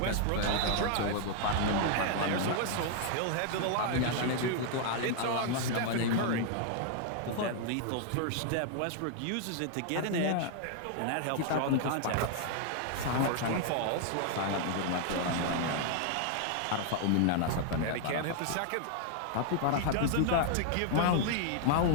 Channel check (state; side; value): different; both; correlation 0.00